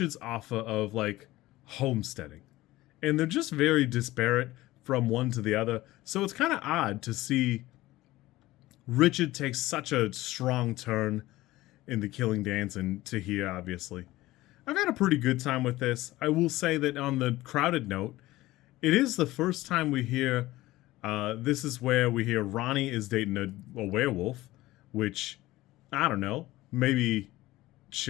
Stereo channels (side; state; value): right; quieter; 17.6 dB